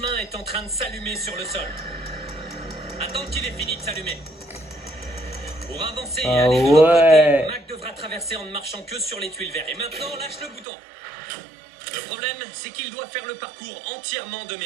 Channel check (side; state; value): left; drops out; at 10.7 s